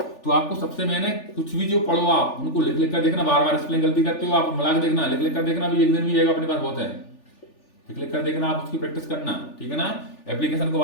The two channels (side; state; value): right; late; 3.4 ms